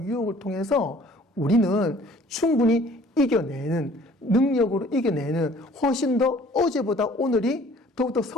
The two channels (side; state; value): both; normal; correlation 0.53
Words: 통해서 우리는 충분히 이겨내는, 능력으로 이겨내는 훨씬 더 어제보다 오늘이 더욱더